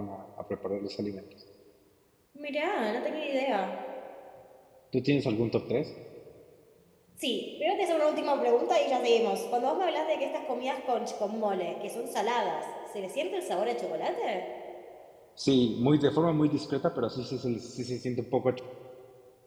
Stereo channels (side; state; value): both; identical; correlation 1.00